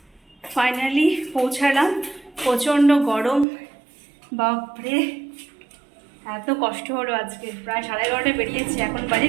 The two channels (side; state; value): left; drops out; at 3.5 s